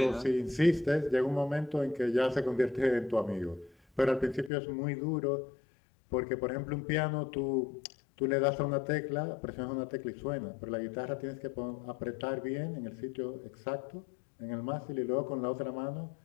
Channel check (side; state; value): right; drops out; at 4.5 s